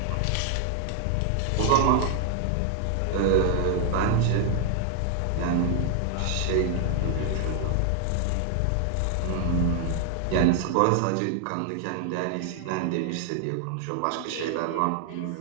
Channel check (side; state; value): both; different; correlation 0.00